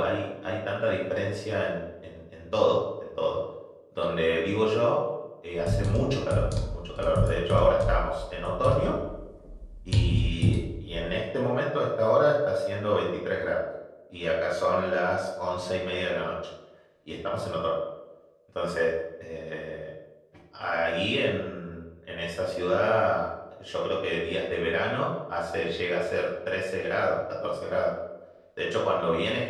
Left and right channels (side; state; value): both; identical; correlation 1.00